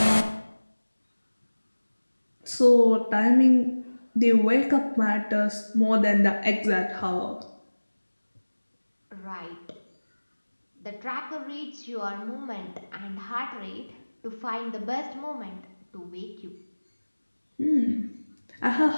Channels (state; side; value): inverted; both; correlation -1.00